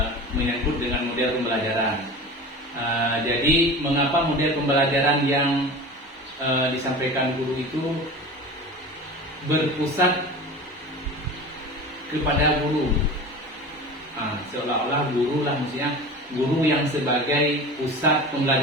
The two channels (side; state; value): both; normal; correlation 0.34